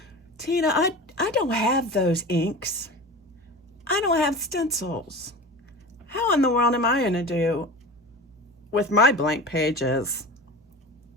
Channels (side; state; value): both; normal; correlation 0.32